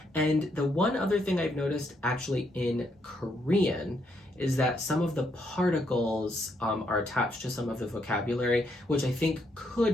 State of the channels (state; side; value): normal; both; correlation 0.76